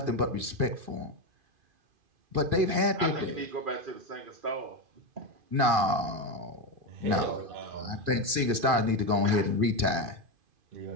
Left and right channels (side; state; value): left; late; 2.5 ms